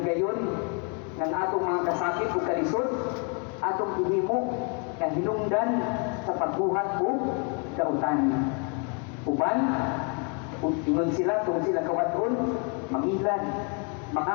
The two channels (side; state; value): right; quieter; 36.6 dB